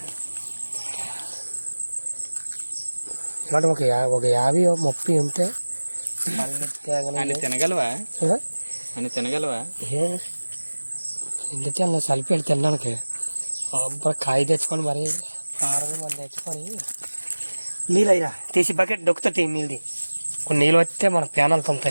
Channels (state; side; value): inverted; both; correlation -1.00